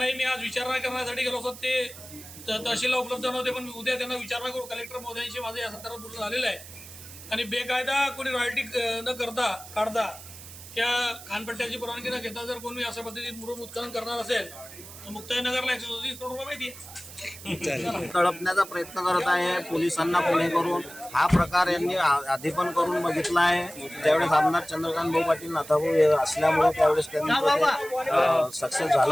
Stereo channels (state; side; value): noise; right; hiss, 15 dB below the sound